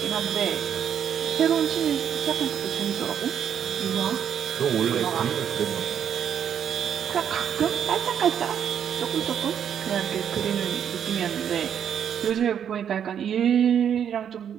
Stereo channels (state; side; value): quieter; left; 8.7 dB